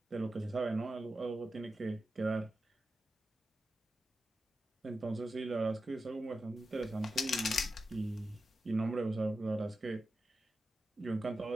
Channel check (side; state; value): both; normal; correlation 0.91